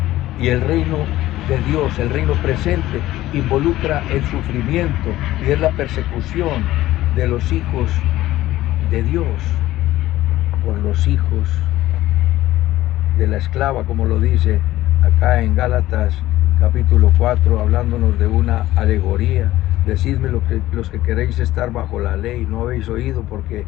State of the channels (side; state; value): right; quieter; 15.6 dB